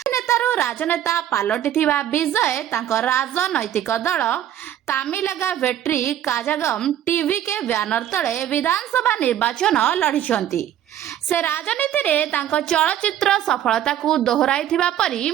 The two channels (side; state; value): left; quieter; 11.1 dB